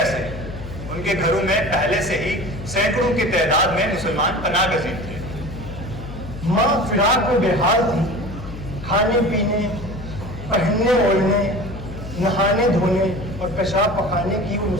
उनके घरों में पहले से ही सैकड़ों की तादाद में मुसलमान पनाह गजीर थे। माँ फिराक में बेहाल थी, खाने पीने, पहनने ओढ़ने, नहाने धोने और पेशाब पखाने की वो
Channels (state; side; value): noise; left; hum, 11 dB below the sound